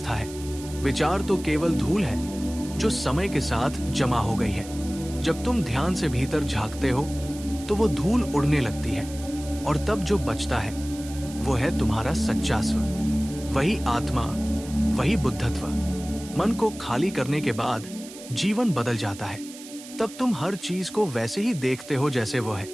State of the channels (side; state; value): right; noise; hiss, 16 dB below the sound